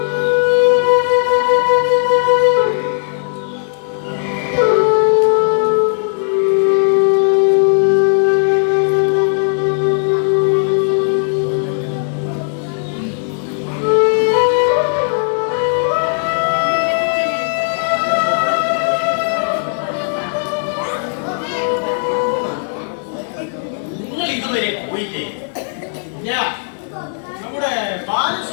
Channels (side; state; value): right; silent; 66 dB below the other